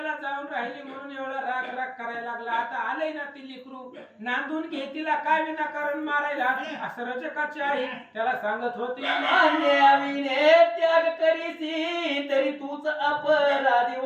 जाऊन राहिली म्हणून एवढा राग राग करायला लागला, आता आलंय ना ती लेकरू, नांदून घे तिला, काय विनाकारण मारायला, असं रजकाची आई त्याला सांगत होती. अन्याविने त्याग करीसी तरी तूच अपराधी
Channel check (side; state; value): both; identical; correlation 1.00